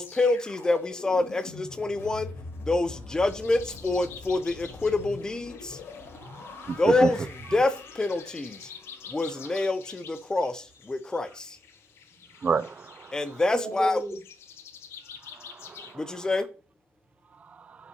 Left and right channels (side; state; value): both; normal; correlation 0.86